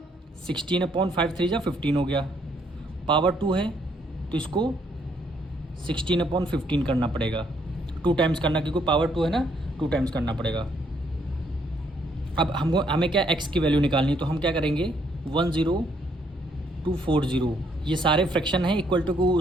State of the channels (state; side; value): normal; both; correlation 0.70